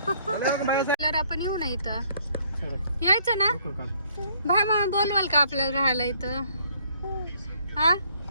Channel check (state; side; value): inverted; both; correlation -0.64